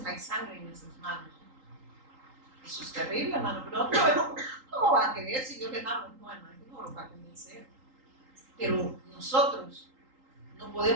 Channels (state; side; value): late; left; 3.8 ms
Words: hay sangre en nuestras manos. Eso es terrible, hermano, pero otro vemos, ¿cómo va a creer si yo les hablo? No, hermano, no lo va a convencer. Pero nosotros no